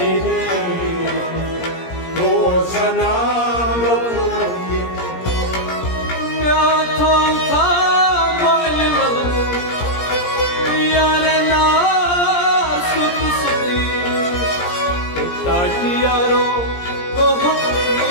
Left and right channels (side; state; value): right; late; 17 ms